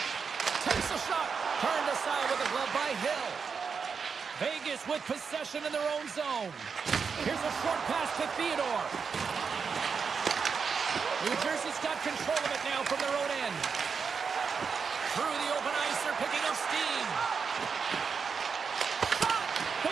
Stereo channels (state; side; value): quieter; left; 5.8 dB